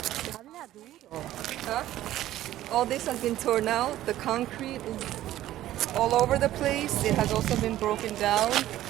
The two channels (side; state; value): left; quieter; 13.9 dB